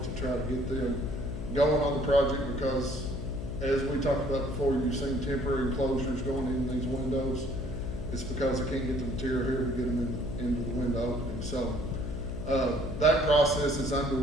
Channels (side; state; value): left; noise; hum, 7 dB below the sound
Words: to try to get them going on the project, because as we talked about before, you've seen temporary enclosures going in these windows. It's because they can't get the material here to get them into the window opening. So That process is